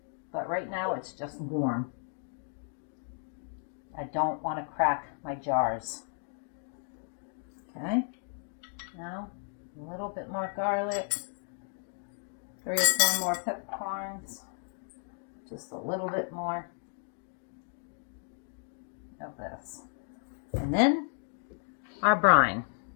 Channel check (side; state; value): right; silent; 55 dB below the other